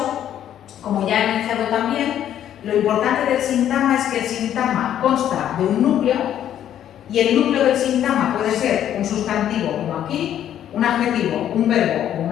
como ya he mencionado también, lo importante del sintagma es que el sintagma consta de un núcleo, y el núcleo del sintagma puede ser un sustantivo, como aquí, un adjetivo, un verbo o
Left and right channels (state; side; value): quieter; right; 10.7 dB